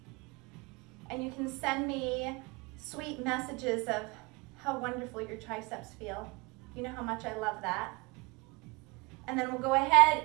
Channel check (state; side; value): quieter; left; 25.7 dB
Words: And you can send me sweet messages of how wonderful your triceps feel. You know how much I love that. And then we'll go ahead